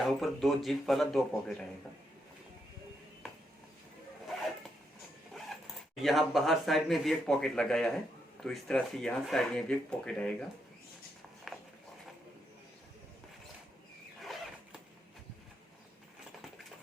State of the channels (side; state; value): both; normal; correlation 0.80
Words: ऊपर दो जिप वाला दो पॉकेट आएगा। यहाँ बाहर साइड में भी एक पॉकेट लगाया है। तो इस तरह से यहाँ साइड में भी एक पॉकेट आएगा।